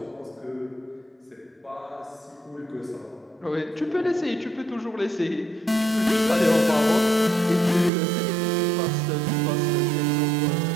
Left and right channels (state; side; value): drops out; left; at 7.9 s